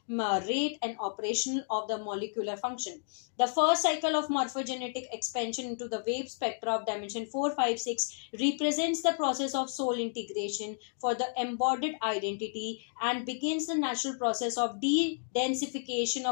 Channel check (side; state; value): right; silent; digital silence